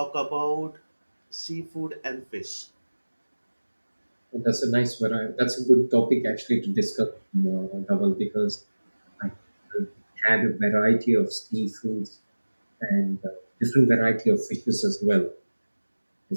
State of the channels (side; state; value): both; inverted; correlation -1.00